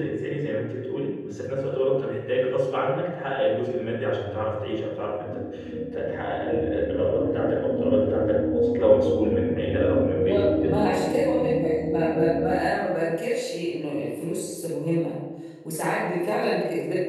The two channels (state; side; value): identical; both; correlation 1.00